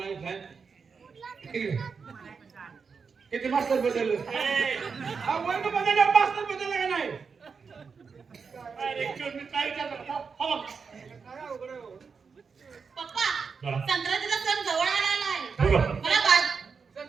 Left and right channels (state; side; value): quieter; left; 5.5 dB